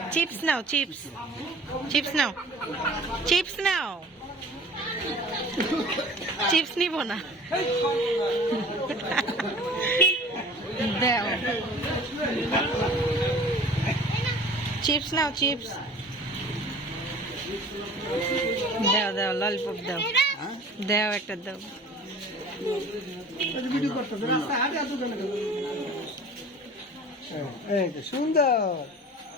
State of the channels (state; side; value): normal; both; correlation 0.44